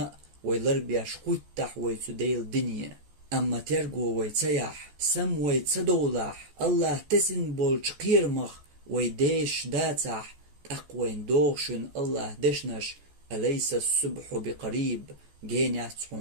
ويلربياش خوتح ويتديل دنيا أما ترقو ويتسيح سم ويتسدولح الله تسن بولش قيرمخ ويديش داتح أقوين دوغشن الله دشنش أليس الصبح بقريب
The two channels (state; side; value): late; left; 14 ms